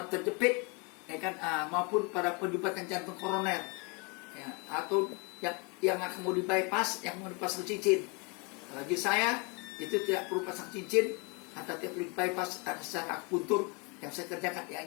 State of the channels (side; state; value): right; quieter; 31.8 dB